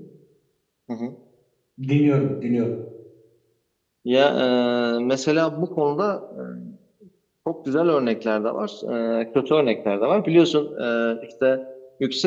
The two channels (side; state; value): both; identical; correlation 1.00